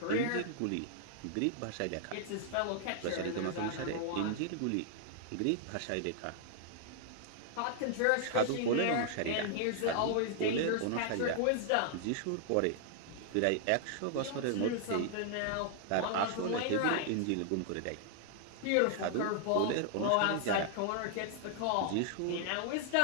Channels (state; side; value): different; both; correlation -0.01